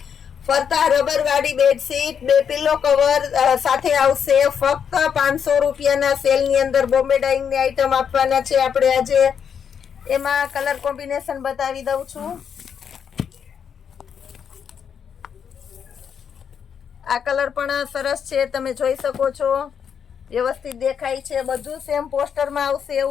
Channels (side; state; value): right; quieter; 7.5 dB